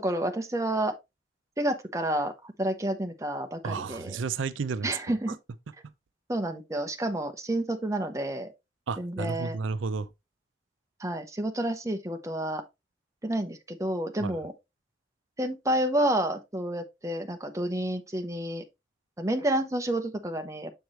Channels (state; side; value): normal; both; correlation 0.58